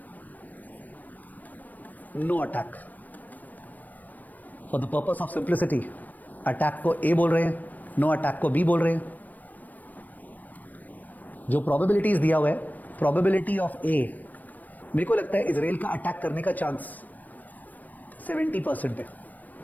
no attack. For the purpose of simplicity attack को ए बोल रहे हैं, नो अटैक को बी बोल रहे हैं. जो प्रोबेबिलिटीज दिया हुआ है प्रोबेबिलिटी ऑफ ए, मेरे को लगता है इजराइल का अटैक करने का चांस 70% है,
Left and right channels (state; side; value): late; right; 0.083 ms